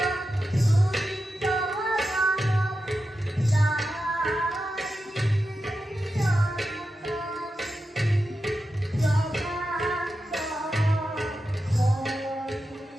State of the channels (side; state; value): both; normal; correlation 0.90